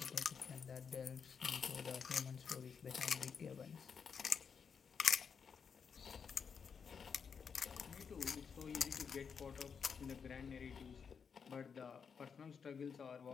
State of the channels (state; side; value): quieter; right; 6.3 dB